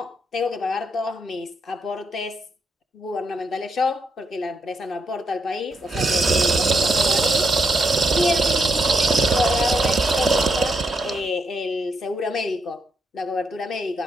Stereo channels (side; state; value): both; normal; correlation 0.79